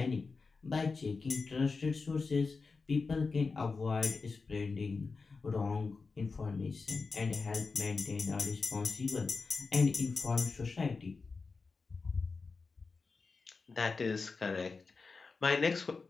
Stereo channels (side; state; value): right; quieter; 4.4 dB